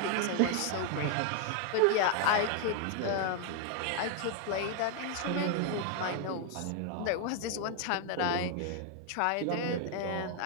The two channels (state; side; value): different; both; correlation 0.01